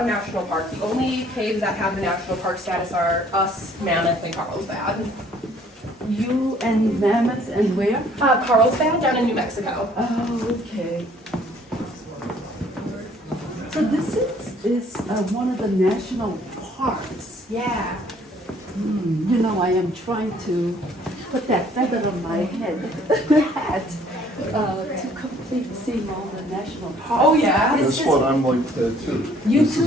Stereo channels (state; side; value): normal; both; correlation 0.59